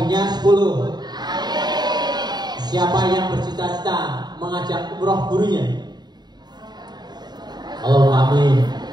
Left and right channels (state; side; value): late; left; 0.20 ms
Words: 10. Siapa yang bercita-cita mengajak umroh gurunya? Allahumma amin.